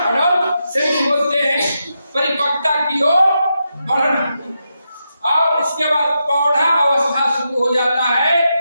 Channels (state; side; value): inverted; both; correlation -0.85